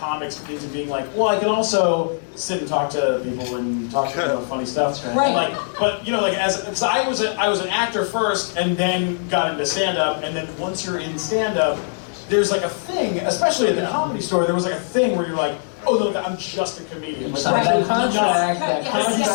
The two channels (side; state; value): right; silent; digital silence